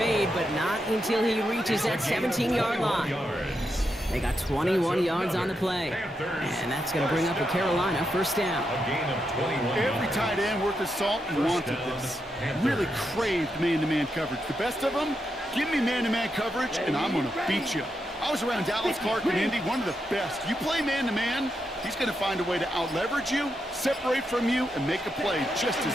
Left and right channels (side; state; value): both; normal; correlation 0.84